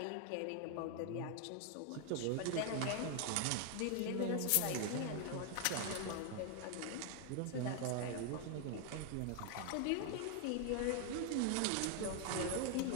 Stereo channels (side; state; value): both; different; correlation 0.00